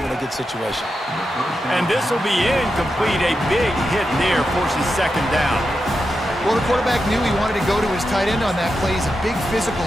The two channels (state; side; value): normal; both; correlation 0.88